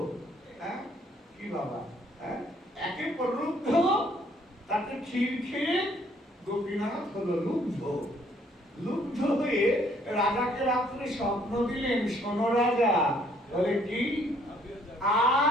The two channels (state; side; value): normal; both; correlation 0.64